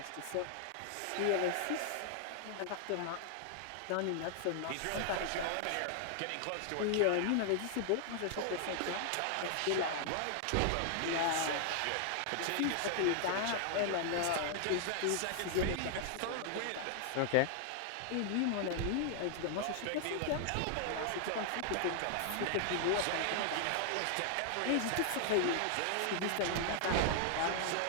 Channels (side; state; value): both; different; correlation 0.00